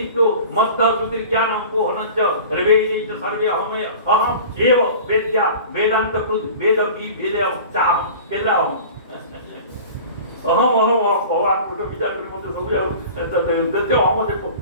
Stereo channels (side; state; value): both; inverted; correlation -0.40